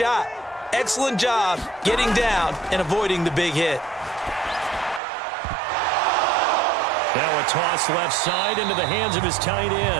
Excellent job getting down and avoiding the big hit. Now a toss left side into the hands of his tight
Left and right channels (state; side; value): drops out; left; at 5.0 s